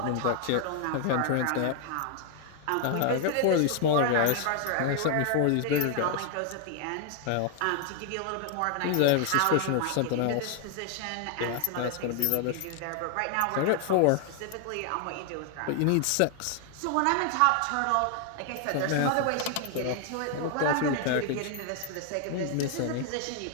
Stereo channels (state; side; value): different; both; correlation 0.00